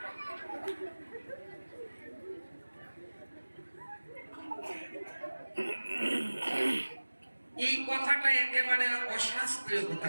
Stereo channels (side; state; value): both; inverted; correlation -1.00